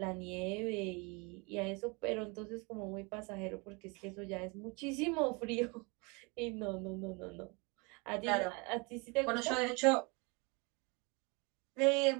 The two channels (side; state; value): left; quieter; 29.7 dB